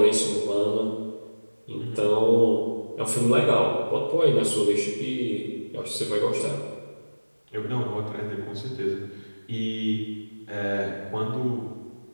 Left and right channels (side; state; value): both; inverted; correlation -1.00